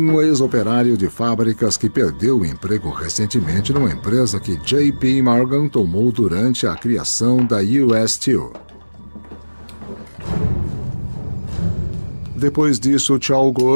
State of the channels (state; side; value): inverted; both; correlation -1.00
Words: ex-operário de fábricas que perdeu o emprego recentemente numa empresa que J.P. Morgan tomou durante a criação da US Steel. Depois disso,